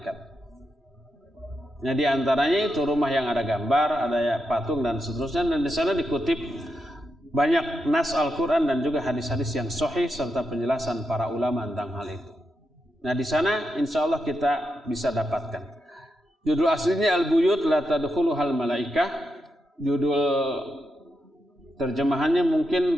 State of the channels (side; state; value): both; normal; correlation 0.85